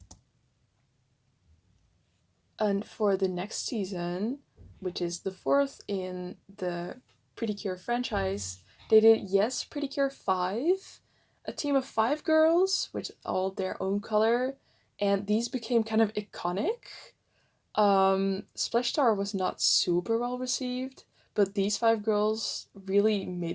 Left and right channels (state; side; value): identical; both; correlation 1.00